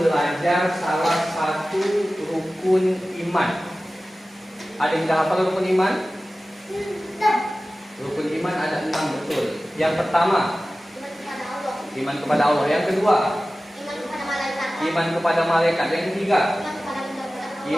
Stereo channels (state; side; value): normal; both; correlation 0.96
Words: belajar salah satu rukun iman. Ada yang sudah hafal rukun iman? Rukun iman ada 6, betul. Yang pertama, iman kepada Allah. Yang kedua, iman kepada malaikat. Yang ketiga,